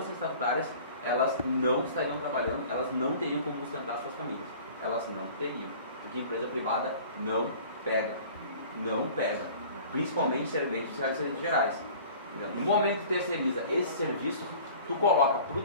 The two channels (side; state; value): both; inverted; correlation -0.46